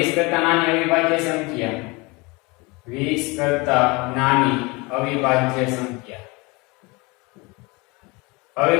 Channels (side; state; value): right; quieter; 26.1 dB